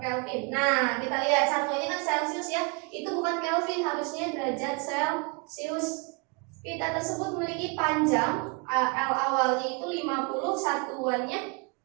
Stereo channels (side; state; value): left; quieter; 32.3 dB